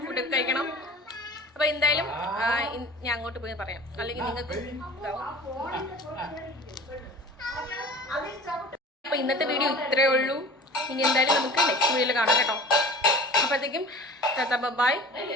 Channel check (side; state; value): both; normal; correlation 0.41